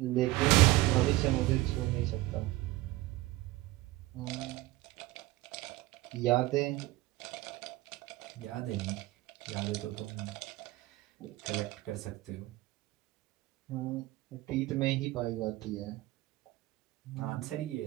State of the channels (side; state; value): left; quieter; 18.0 dB